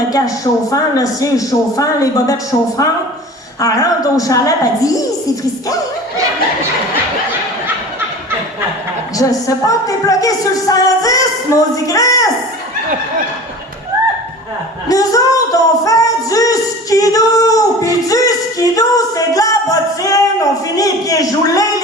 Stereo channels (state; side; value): normal; both; correlation 0.38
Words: cache chauffant, le siège chauffant, les bobettes chauffantes. Elle rentre au chalet, elle dit « c'est frisquet! » Je sais pas, t'es bloqué sur le 110, maudit Chris! Nous autres, on fait du skidoo! Puis du skidoo, c'est de la bottine! On finit les pieds joulés,